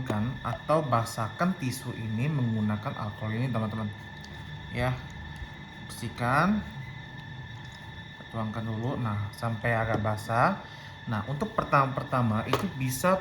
atau basahkan tisu ini menggunakan alkohol ini teman-teman ya. Bersihkan, tuangkan dulu. Nah, sampai agak basah. Nah, untuk pertama itu bisa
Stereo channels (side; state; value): both; identical; correlation 1.00